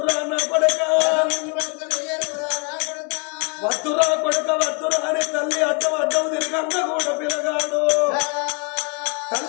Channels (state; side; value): quieter; right; 33.1 dB